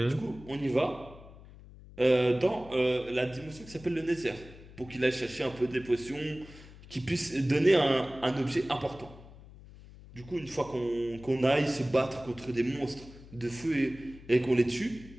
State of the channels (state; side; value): noise; left; hum, 19 dB below the sound